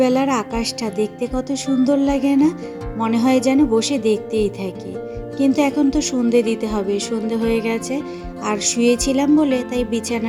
আকাশটা দেখতে কত সুন্দর লাগে না, মনে হয় যেন বসে দেখতেই থাকি। কিন্তু এখন তো সন্ধে দিতে হবে, সন্ধে হয়ে গেছে। আর শুয়েছিলাম বলে তাই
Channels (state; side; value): identical; both; correlation 1.00